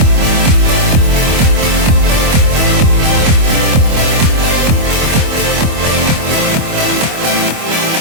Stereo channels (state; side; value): late; left; 25 ms